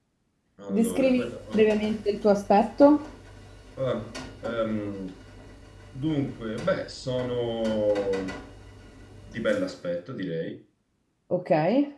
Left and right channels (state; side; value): identical; both; correlation 1.00